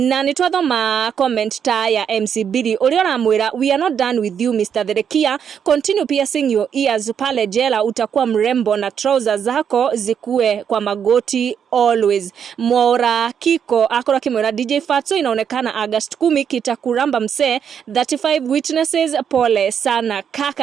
ni twathoma comment ta ya MC Billy uria uramwira we are not done with you Mr. Therekia, continue piercing your ears pale jela utakuwa mrembo na trousers zako zikue kwa magoti always. Mwora Kiko akora kimwira DJ Fatxo inaonekana August 10 kitakuramba mse 35 witnesses pole sana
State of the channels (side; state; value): left; quieter; 7.9 dB